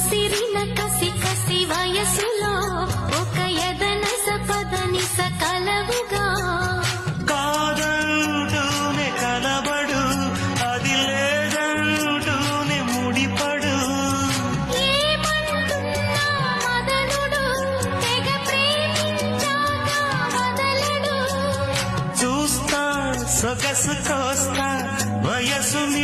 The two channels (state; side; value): identical; both; correlation 1.00